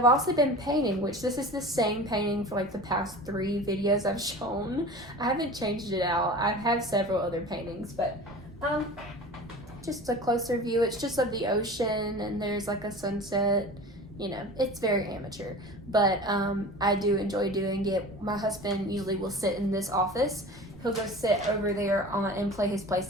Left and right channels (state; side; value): noise; right; rumble, 22 dB below the sound